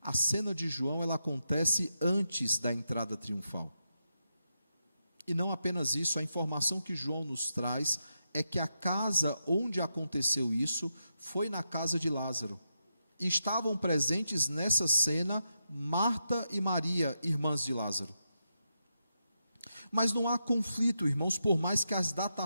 cena de João ela acontece antes da entrada triunfal. E não apenas isso, a informação que João nos traz é que a casa onde aconteceu isso foi na casa de Lázaro. E estavam presentes nessa cena Marta e Maria, irmãs de Lázaro. Mas não há conflito, irmãos, por mais que as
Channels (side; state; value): both; inverted; correlation -0.85